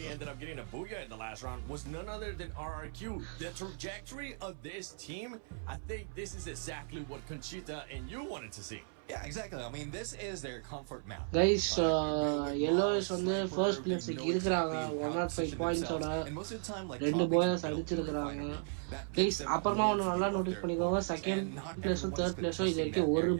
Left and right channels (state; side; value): silent; left; 54 dB below the other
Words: ended up getting a booyah in the last round was none other than RRQ. The trajectory of this team, I think this is exactly what Conchita and you wanted to see. Yeah, exactly. I mean, this is their comfort map. Guys, yellows வந்து first place இருக்கிறாங்க 105 பாயிண்ட்ஸோட 2 bowlers அடிச்சிருக்காங்க. Guys, அப்புறமா ஒன்னு நல்லா நோட்டீஸ் பண்ணிக்கோங்க, செகண்ட் பிளேஸும் தேர்ட் பிளேஸும் இது வரைக்கும் ஒரு